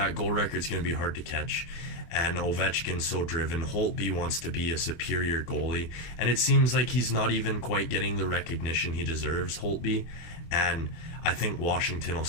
goal record's going to be hard to catch. And Ovechkin's so driven. Holtby wants to be a superior goalie, and it seems like he's not even quite getting the recognition he deserves, Holtby. And I think Washington will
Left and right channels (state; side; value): late; right; 24 ms